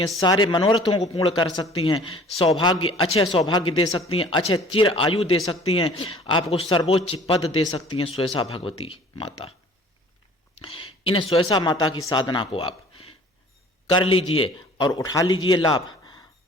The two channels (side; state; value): both; normal; correlation 0.50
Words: सारे मनोरथों को पूर्ण कर सकती हैं, सौभाग्य, अच्छे सौभाग्य दे सकती हैं, अच्छे चिर आयु दे सकती हैं, आपको सर्वोच्च पद दे सकती हैं सुयसा भगवती माता। इन सुयसा माता की साधना को आप कर लीजिए और उठा लीजिए लाभ।